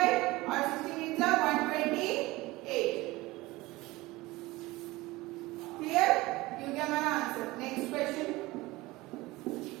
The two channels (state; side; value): quieter; left; 20.3 dB